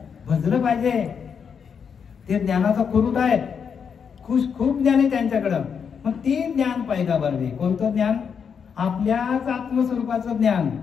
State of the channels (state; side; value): quieter; right; 6.8 dB